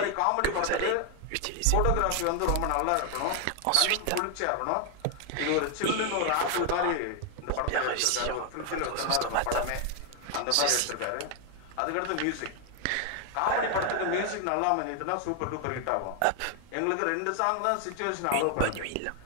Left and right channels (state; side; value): different; both; correlation 0.00